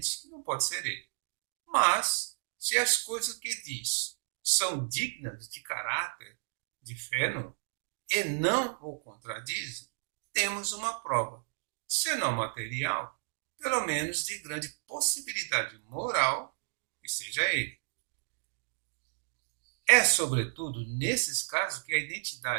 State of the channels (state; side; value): silent; left; digital silence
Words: que não pode ser ele. Mas, se as coisas que diz são dignas de caráter de Fenelon e não o contradizem, temos uma prova, se não material, pelo menos de grande possibilidade moral que seja ele. É, sobretudo, nesses casos que a